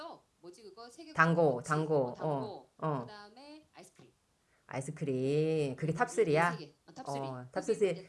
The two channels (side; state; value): both; identical; correlation 1.00